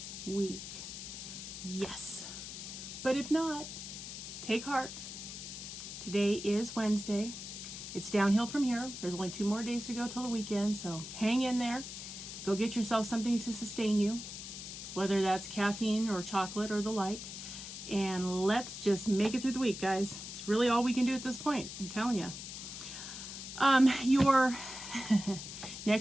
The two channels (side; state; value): left; noise; hiss, 9 dB below the sound